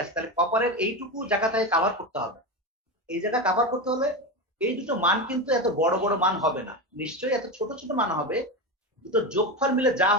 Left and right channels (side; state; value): both; normal; correlation 0.18